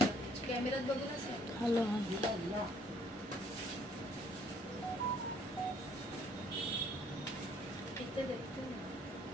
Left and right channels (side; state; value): both; normal; correlation 0.63